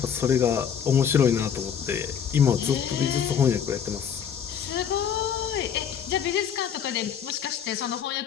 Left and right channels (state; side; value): quieter; right; 8.1 dB